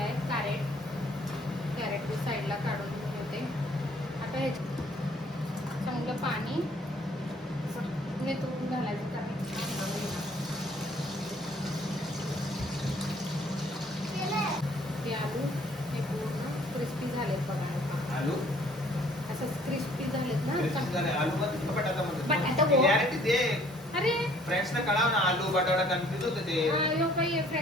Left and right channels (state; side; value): normal; both; correlation 0.59